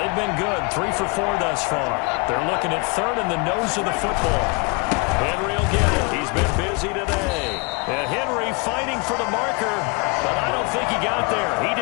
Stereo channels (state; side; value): quieter; right; 29.8 dB